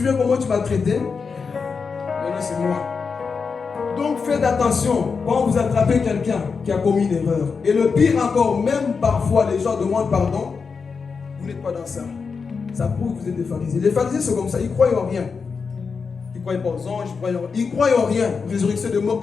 comment tu m'as traité? Maintenant, c'est moi. Donc, faites attention quand vous attrapez quelqu'un qui a commis une erreur. Et le pire encore, même parfois, les gens demandent pardon. Vous n'êtes pas dans ça. Ça prouve que vous êtes des pharisiens. Les pharisiens sont comme ça, ils ne croient en rien. Ils ne croient pas aux anges, ils ne croient en rien. Résurrection de mort,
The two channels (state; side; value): quieter; right; 5.3 dB